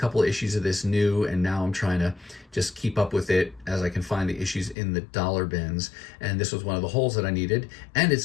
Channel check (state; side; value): drops out; right; at 4.8 s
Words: of issues of this new, and now I'm trying to just keep up with it as I can find the issues in the dollar bins. And this was one of the holes that I needed. And